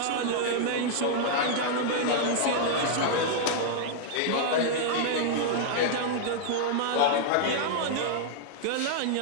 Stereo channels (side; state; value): both; different; correlation -0.01